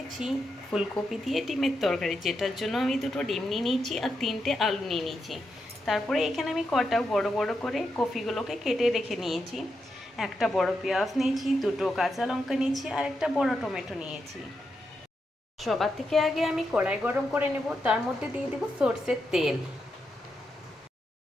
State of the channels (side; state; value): both; normal; correlation 0.85